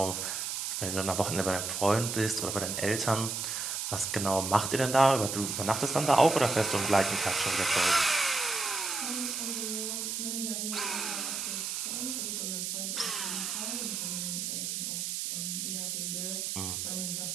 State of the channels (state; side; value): noise; right; hiss, 2 dB below the sound